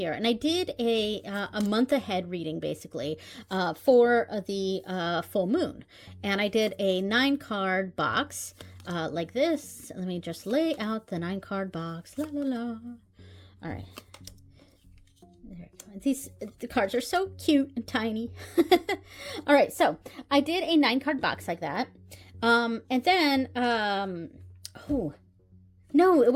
and I did a month ahead reading, basically, for the full moon. And I did a 9-card box like this. Let me just lay out the 9-card box. La la la. All right. The cards are so cute and tiny. All right, so I did a 9-card box like that. And then, oh, no, it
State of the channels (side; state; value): both; identical; correlation 1.00